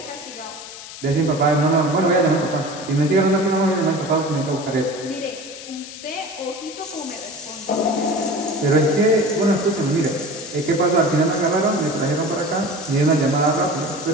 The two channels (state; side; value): noise; left; hiss, 14 dB below the sound